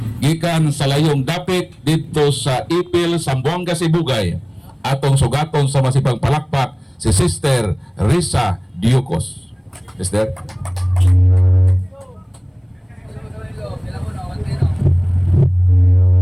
gikan sa layong dapit dito sa Ipil, Zamboanga, Sibugay atong sugaton sa masipang palakpak si Sister Risa Diocos. Sister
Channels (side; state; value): both; identical; correlation 1.00